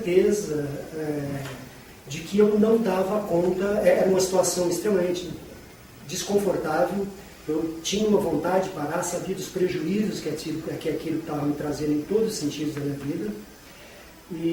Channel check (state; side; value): identical; both; correlation 1.00